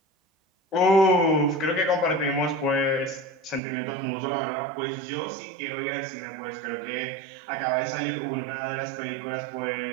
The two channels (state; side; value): drops out; left; at 3.6 s